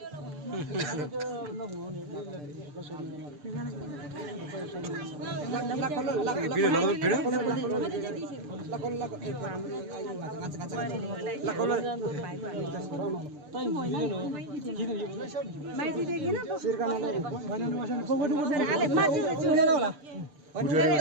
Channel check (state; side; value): late; left; 6.7 ms